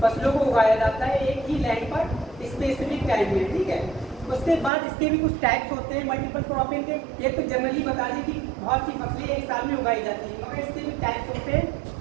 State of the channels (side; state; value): left; drops out; at 4.7 s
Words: फसलों को उगाया जाता है एक ही लैंड पर स्पेसिफिक टाइम में, ठीक है। उसके बाद इसके भी कुछ टाइप्स होते हैं मल्टीपल क्रॉपिंग के। एक तो जनरली बता दें कि बहुत सी फसलें एक साल में उगाई जाती हैं, मगर इसके भी टाइप्स होते हैं,